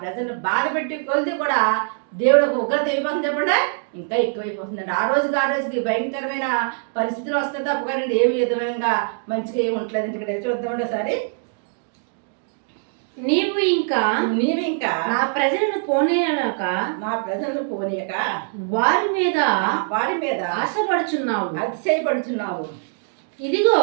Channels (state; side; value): silent; left; 64 dB below the other